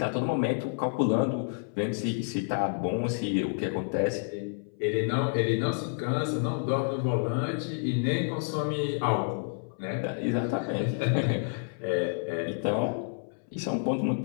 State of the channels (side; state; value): right; silent; 58 dB below the other